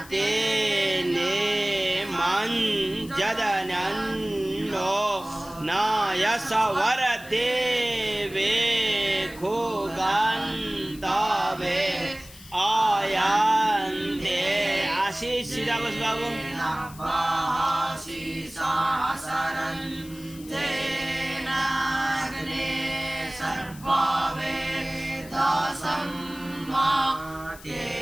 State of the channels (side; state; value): left; noise; hiss, 19 dB below the sound